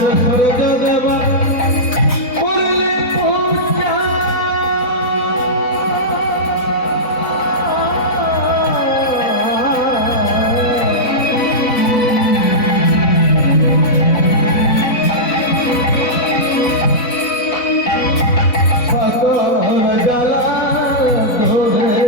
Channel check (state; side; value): late; right; 4.0 ms